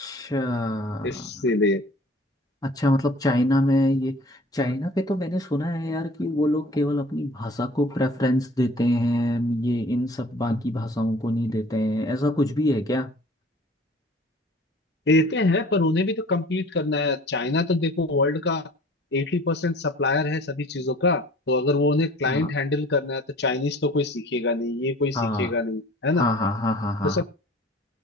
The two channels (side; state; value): both; normal; correlation 0.48